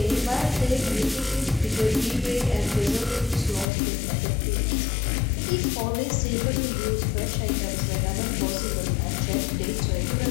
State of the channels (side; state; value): right; drops out; at 3.7 s